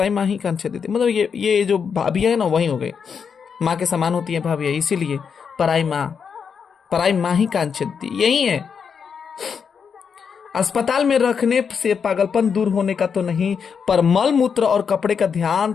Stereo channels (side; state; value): right; quieter; 6.5 dB